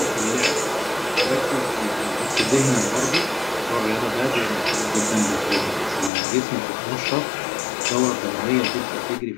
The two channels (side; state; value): right; drops out; at 6.1 s